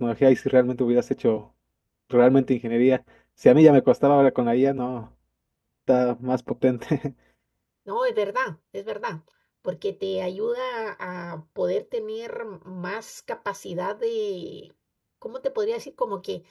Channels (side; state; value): both; identical; correlation 1.00